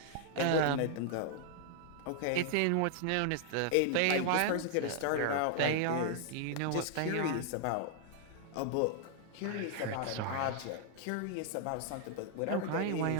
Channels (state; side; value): different; both; correlation 0.00